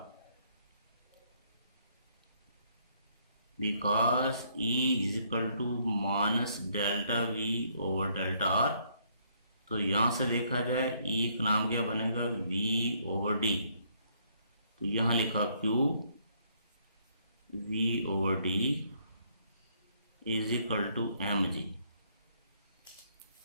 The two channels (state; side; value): inverted; both; correlation -0.68